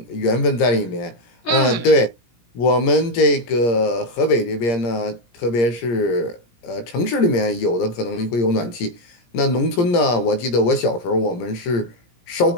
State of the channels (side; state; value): right; late; 17 ms